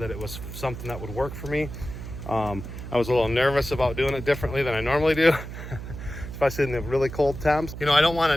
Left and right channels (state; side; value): noise; right; hum, 9 dB below the sound